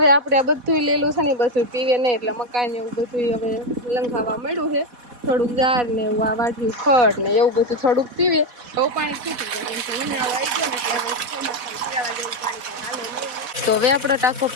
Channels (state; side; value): late; left; 4.1 ms